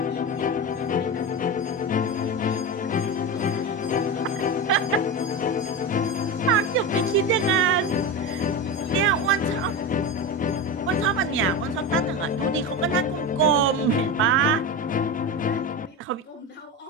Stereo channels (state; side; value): normal; both; correlation 0.21